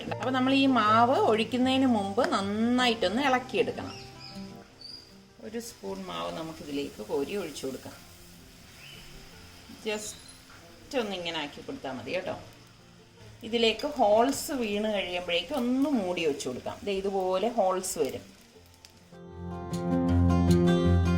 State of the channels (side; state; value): both; identical; correlation 1.00